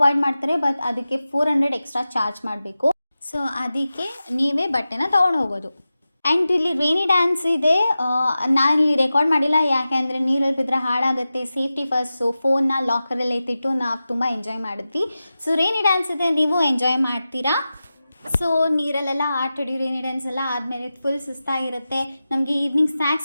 ಮಾಡ್ತಾರೆ, ಬಟ್ ಅದಕ್ಕೆ 400 ಎಕ್ಸ್ಟ್ರಾ ಚಾರ್ಜ್ ಮಾಡಬೇಕು. ಸೊ ಅದಕ್ಕೆ ನೀವೇ ಬಟ್ಟೆನ ತೊಗೊಂಡು ಹೋಗೋದು. ಆ್ಯಂಡ್ ಇಲ್ಲಿ ರೇನಿ ಡ್ಯಾನ್ಸ್ ಇದೆ. ನಾನಿಲ್ಲಿ ರೆಕಾರ್ಡ್ ಮಾಡಿಲ್ಲ, ಯಾಕೆ ಅಂದರೆ ನೀರಲ್ಲಿ ಬಿದ್ದರೆ ಹಾಳಾಗುತ್ತೆ, ಸೇಫ್ಟಿ ಫಸ್ಟ್. ಸೊ ಫೋನ್ನ ಲಾಕರಲ್ಲಿ ಎತ್ತಿಟ್ಟು ನಾವು ತುಂಬ ಎಂಜಾಯ್ ಮಾಡಿದ್ವಿ. ಸೊ ರೇನಿ ಡ್ಯಾನ್ಸ್ ಇದೆ, ನೀವು ಎಂಜಾಯ್ ಮಾಡ್ತೀರಾ. ಸೊ ನೀರಲ್ಲೆಲ್ಲ ಆಟಾಡಿ ರೇನಿ ಡ್ಯಾನ್ಸ್ ಎಲ್ಲ ಆದಮೇಲೆ ಫುಲ್ ಸುಸ್ತಾಗಿರುತ್ತೆ. ನಮಗೆ ಈವ್ನಿಂಗ್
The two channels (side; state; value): both; inverted; correlation -0.94